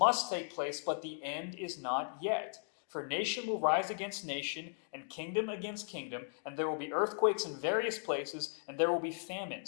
take place, but the end is not yet. For nation will rise against nation, and kingdom against kingdom, and there will be earthquakes in various places, and there will be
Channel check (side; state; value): right; silent; digital silence